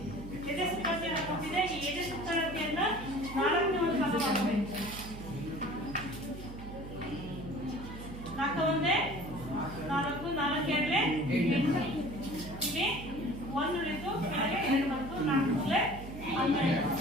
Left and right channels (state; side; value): noise; right; hum, 11 dB below the sound